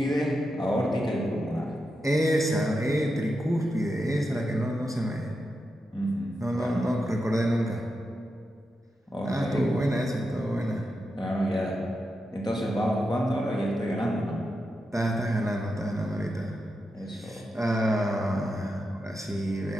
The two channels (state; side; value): normal; both; correlation 0.88